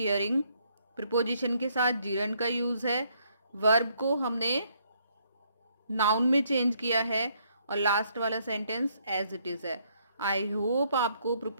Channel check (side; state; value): both; inverted; correlation -0.70